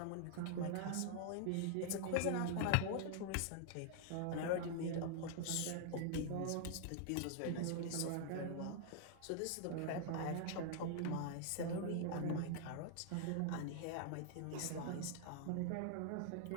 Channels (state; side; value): different; both; correlation 0.00